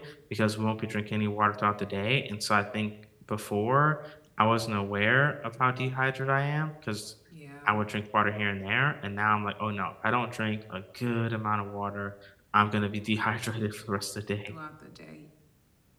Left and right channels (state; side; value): identical; both; correlation 1.00